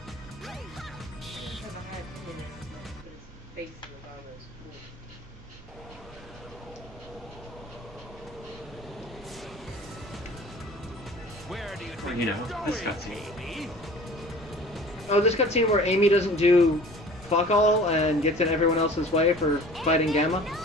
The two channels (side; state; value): right; noise; hum, 21 dB below the sound